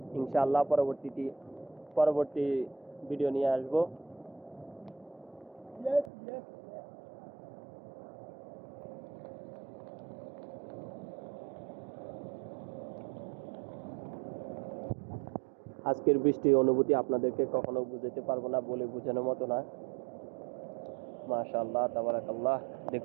ইনশাআল্লাহ পরবর্তী ভিডিও নিয়ে আসবো। আজকের বৃষ্টির অনুভূতি আপনাদেরকে কখনো বুঝাতে পারবো না, বলে বোঝানোর মতো না। মাশাআল্লাহ, তাবারাকাল্লাহ।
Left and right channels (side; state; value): left; drops out; at 6.1 s